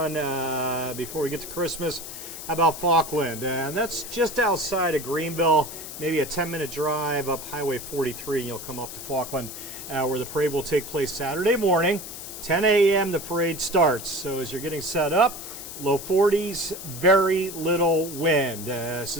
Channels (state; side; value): noise; left; hiss, 10 dB below the sound